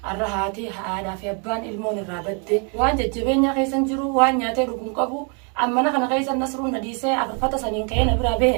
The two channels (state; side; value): quieter; left; 37.3 dB